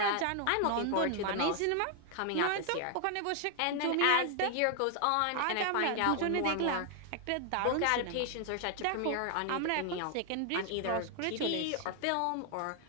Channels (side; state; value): both; different; correlation 0.00